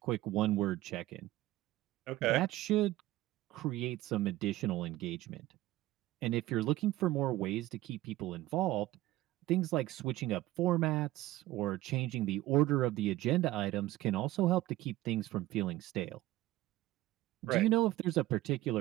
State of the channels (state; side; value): quieter; left; 16.5 dB